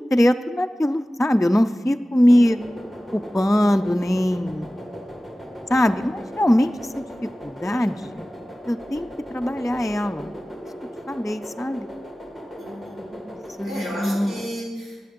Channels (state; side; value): normal; both; correlation 0.96